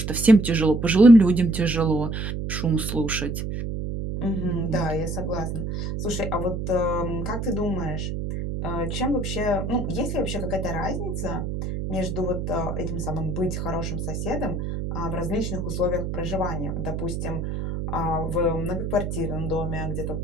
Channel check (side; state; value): right; noise; hum, 3 dB below the sound